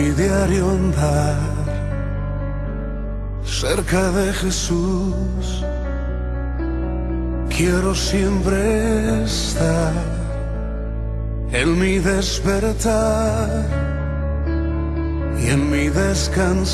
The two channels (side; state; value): both; identical; correlation 1.00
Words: diario andar, cerca de Jesús, quiero siempre estar. En mi despertar y en mi